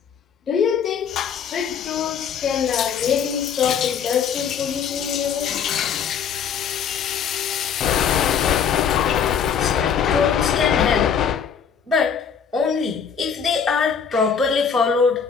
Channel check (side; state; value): right; quieter; 7.2 dB